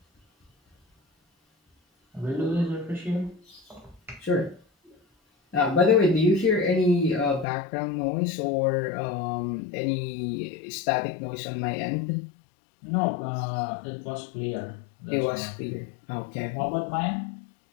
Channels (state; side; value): drops out; right; at 7.5 s